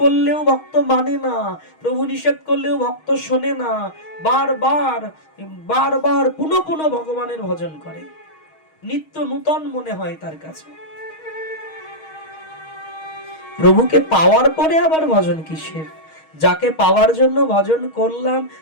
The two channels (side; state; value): right; late; 6.4 ms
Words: করলেও ভক্ত মানে না, প্রভু নিষেধ করলেও ভক্ত শোনে না, বারবার বারবার পুনঃ পুনঃ ভগবানের ভজন করে, নিত্য নূতন মনে হয় তার কাছে। প্রভুকে পাওয়ার পরে আবার ভজন কিসের? যাকে পাওয়ার জন্য ভজন করলাম